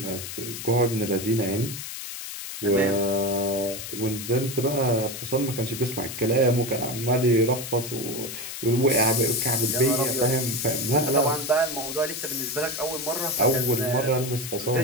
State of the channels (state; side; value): noise; left; hiss, 8 dB below the sound